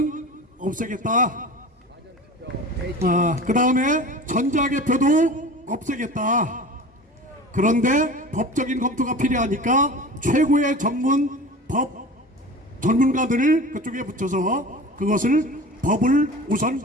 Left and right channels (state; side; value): normal; both; correlation 0.36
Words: 없애겠다. 그 다음에 전자개표도 없애겠다. 그런데 법적인 검토가 필요하니까 최고의 법 전문가들을 그쪽에 붙여서 그것을 법을